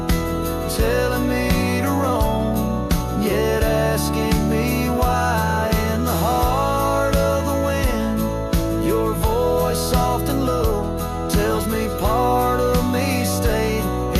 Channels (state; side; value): identical; both; correlation 1.00